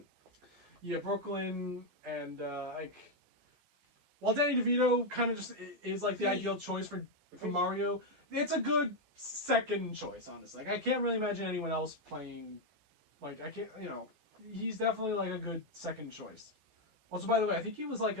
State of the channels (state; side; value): late; left; 14 ms